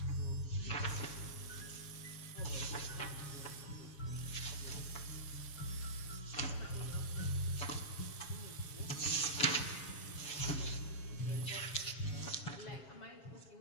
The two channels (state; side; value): late; right; 7.2 ms